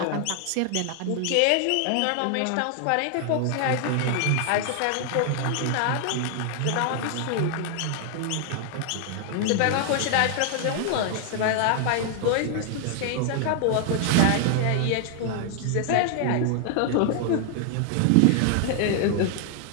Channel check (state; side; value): different; both; correlation 0.00